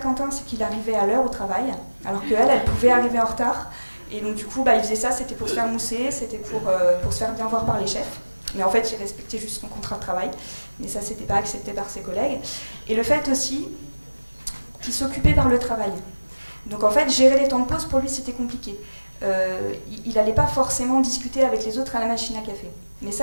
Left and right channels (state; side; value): inverted; both; correlation -1.00